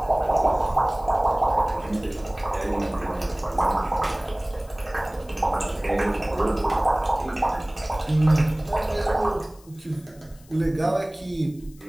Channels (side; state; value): left; noise; hiss, 27 dB below the sound